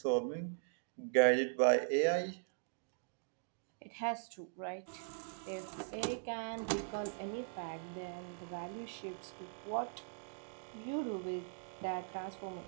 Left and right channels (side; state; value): left; silent; digital silence